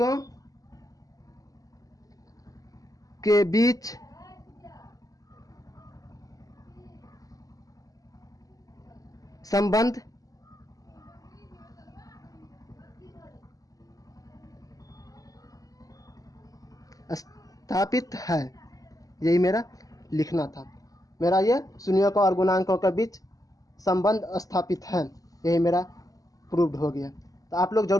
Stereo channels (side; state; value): right; late; 0.17 ms